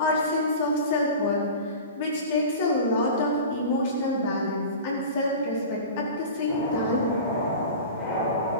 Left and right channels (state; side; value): inverted; both; correlation -0.34